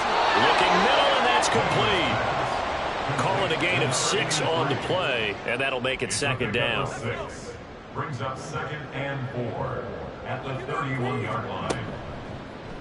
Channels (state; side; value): identical; both; correlation 1.00